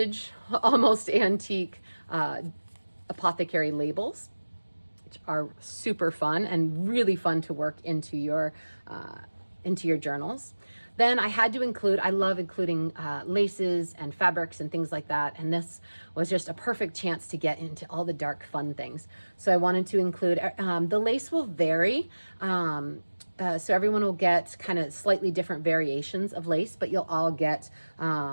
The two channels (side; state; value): both; inverted; correlation -1.00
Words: almost antique apothecary labels, which are super fun and really fun to work into your journals. Then I had to include, I love including laces and fabrics and things like that. And this was just a perfect chance to get into all the dark, fun things. So I wanted to include, the lace will vary. So everyone will get kind of slightly different variations of lace, but you'll all get